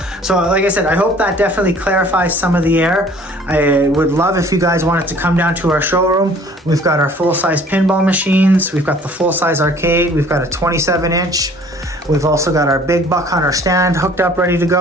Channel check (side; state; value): both; normal; correlation 0.53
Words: So like I said, I hope that definitely clarifies some of the error. I would love if you guys wanted to come down to our showroom. We've got our full-size pinball machines. We've got the full-size arcade. We've got a 27-inch. We've also got our big Buck Hunter stand hooked up, ready to